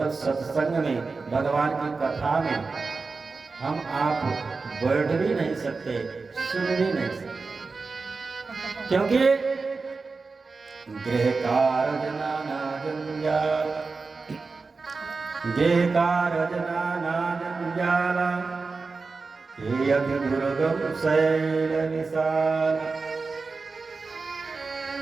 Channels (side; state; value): left; quieter; 4.2 dB